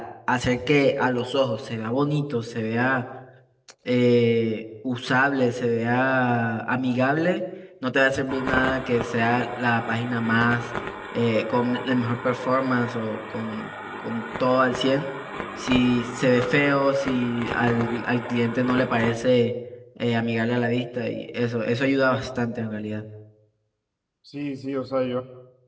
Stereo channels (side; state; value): both; identical; correlation 1.00